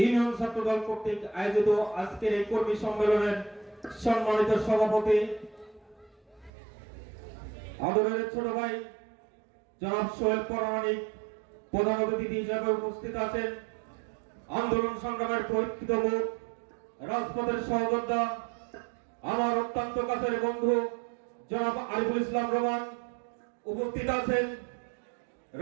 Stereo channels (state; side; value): drops out; left; at 6.5 s